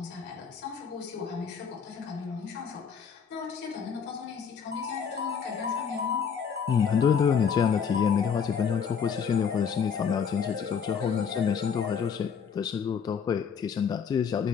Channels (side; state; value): right; quieter; 6.8 dB